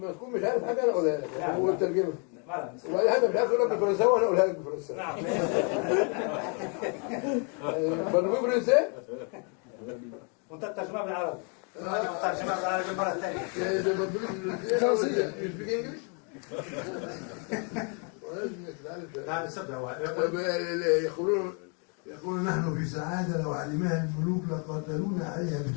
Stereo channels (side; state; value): right; quieter; 37.9 dB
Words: تكون مش عارف حاجة أنا أقولها لك. هو الترجمة. وأي حاجة مش عارف أقولها بالفرنساوي وأنا أقولها لك بالفرنساوي. نعم. برضو فرنسي؟ وأنت الترجمة بالعربي. الترجمة بالعربي مرة ثانية. ده برضو فرنسي. You speak English? نعم سبعة. يقولون نحن في سعادة لو علمها الملوك لقاتلونا عليها